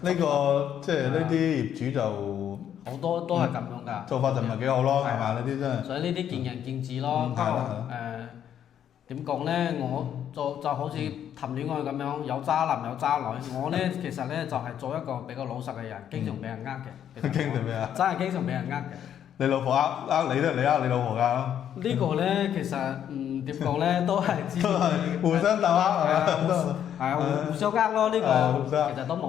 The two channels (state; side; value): quieter; right; 9.6 dB